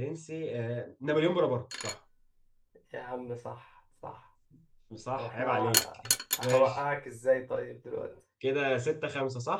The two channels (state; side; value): identical; both; correlation 1.00